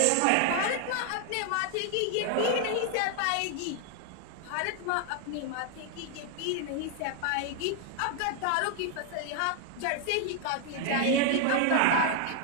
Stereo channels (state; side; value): different; both; correlation 0.00